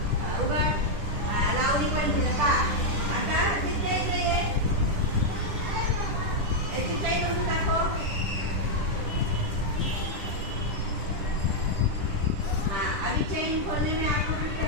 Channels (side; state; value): left; late; 10 ms